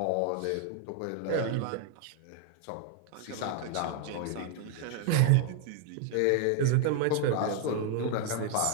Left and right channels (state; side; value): different; both; correlation 0.00